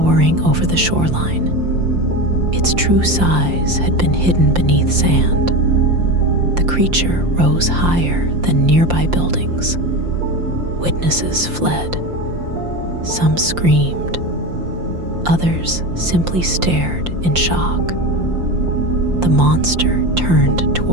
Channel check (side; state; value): left; late; 5.7 ms